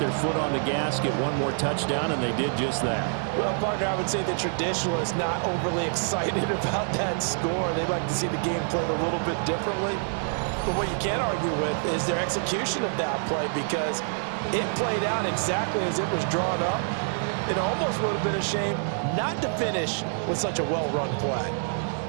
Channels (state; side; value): silent; left; 60 dB below the other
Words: foot on the gas, get one more touchdown, and they did just that. Well, partner, I would say the traditionalists not overly excited about that score. They'd like to see the game played a little bit differently. But what you can't argue with is their execution of that play, because it played out exactly as it was drawn up. It almost would have been a shame not to finish with such a well-run play.